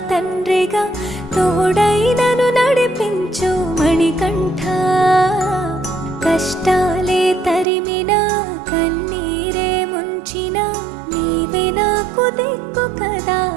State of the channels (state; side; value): drops out; left; at 7.7 s